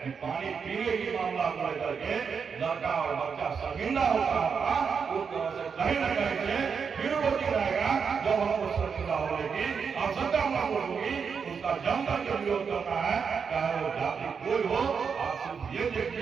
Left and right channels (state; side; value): quieter; left; 6.1 dB